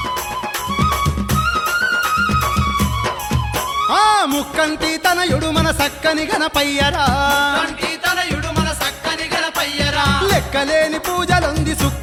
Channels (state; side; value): identical; both; correlation 1.00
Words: ఆ ముక్కంటి తనయుడు మన సక్కని గణపయ్యరా కంటి తనయుడు మన సక్కని గణపయ్యరా లెక్కలేని పూజలుంది